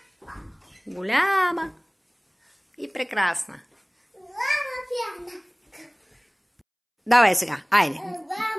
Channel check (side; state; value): both; identical; correlation 1.00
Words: Голяма и прекрасна. Давай сега, айде.